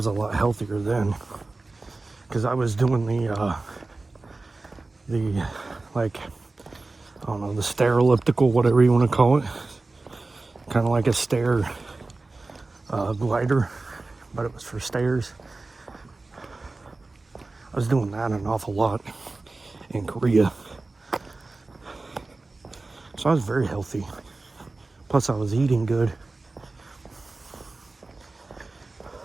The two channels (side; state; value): left; quieter; 3.4 dB